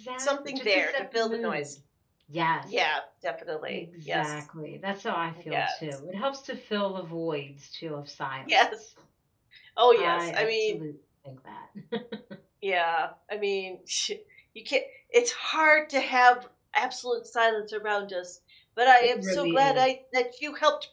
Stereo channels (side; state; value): both; identical; correlation 1.00